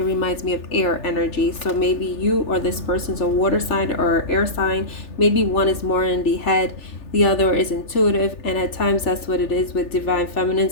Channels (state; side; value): late; right; 3.4 ms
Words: reminds me of air energy. So maybe you or this person's a water sign or air sign. Maybe one is more in the head, the other is intuitive, and at times that's what it is with divine